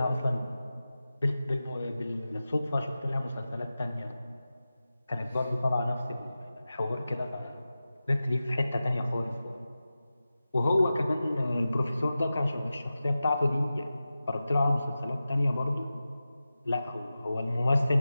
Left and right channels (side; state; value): both; inverted; correlation -0.94